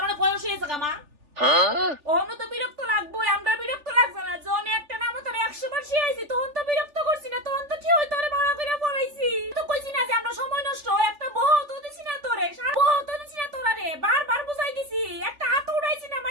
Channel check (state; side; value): late; left; 3.4 ms